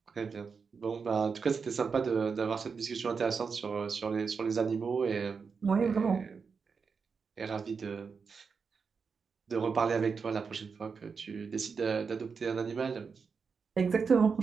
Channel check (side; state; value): left; quieter; 5.5 dB